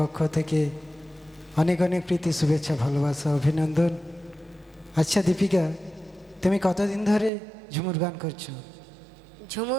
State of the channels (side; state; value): left; drops out; at 7.3 s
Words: থেকে অনেক অনেক প্রীতি শুভেচ্ছা, ভালোবাসা, অভিনন্দন। আচ্ছা দীপিকা, তুমি কতদিন ধরে ঝুমুর গান করছো?